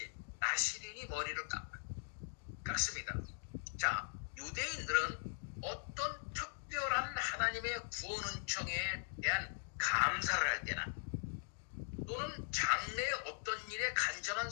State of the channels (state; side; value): silent; right; digital silence